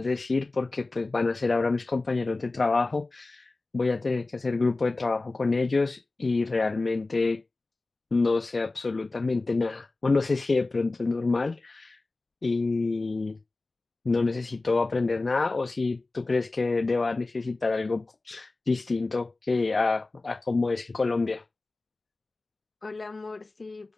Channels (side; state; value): right; quieter; 3.3 dB